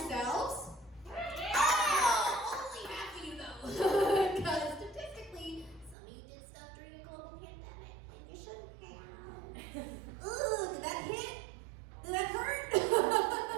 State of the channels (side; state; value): left; drops out; at 6.0 s